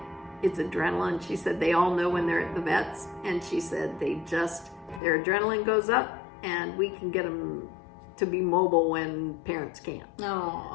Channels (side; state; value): right; drops out; at 5.0 s